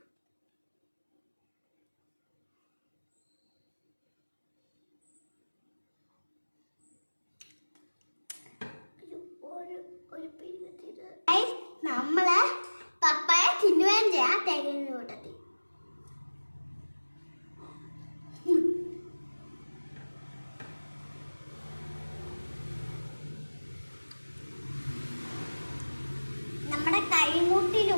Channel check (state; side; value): inverted; both; correlation -1.00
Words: നമ്മളെ പപ്പായ തിന്നുകയും ചെയ്യാം തേങ്ങ കൂട്ടത്തിൽ. നമ്മുടെ